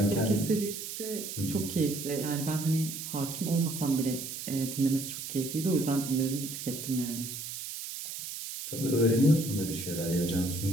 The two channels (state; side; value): noise; right; hiss, 7 dB below the sound